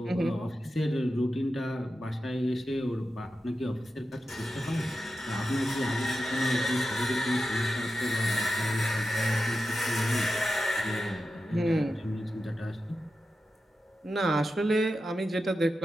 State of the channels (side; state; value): both; normal; correlation 0.91